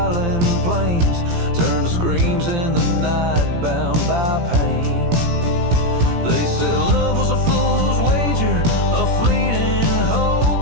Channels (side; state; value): left; late; 17 ms